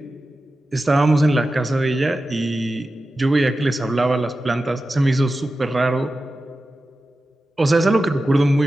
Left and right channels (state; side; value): normal; both; correlation 0.93